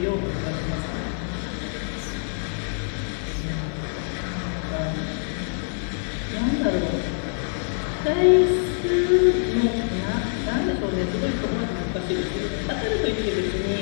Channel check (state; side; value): silent; right; 62 dB below the other